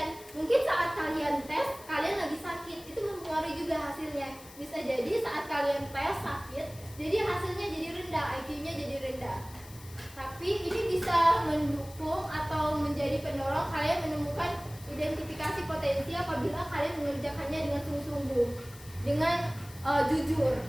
Mungkin saat kalian tes, kalian lagi sakit, itu mempengaruhi juga hasilnya. Bisa jadi saat kalian tes sakit, jadi hasilnya jadi rendah, IQ-nya jadi rendah. Tapi ini bisa mendukung atau menjadi pendorong kalian menemukan identifikasi potensi apabila kalian mengerjakannya dengan sungguh-sungguh, dengan jujur.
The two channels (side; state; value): left; noise; hiss, 19 dB below the sound